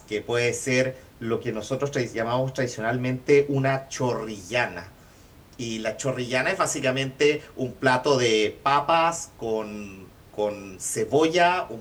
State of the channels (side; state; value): both; identical; correlation 1.00